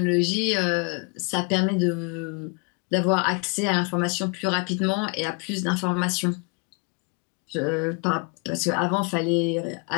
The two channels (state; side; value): quieter; right; 33.3 dB